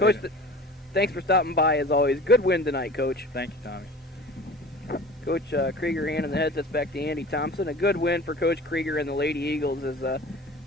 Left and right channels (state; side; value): normal; both; correlation 0.40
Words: thanks for stopping by as always. Good win tonight, Coach. Thank you, Tommy. Coach Krieger handing the headsets back to Andy Thompson. A good win for Coach Krieger and the Lady Eagles as